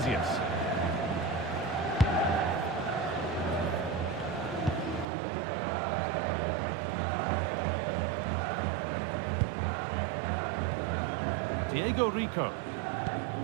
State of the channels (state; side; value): drops out; left; at 5.1 s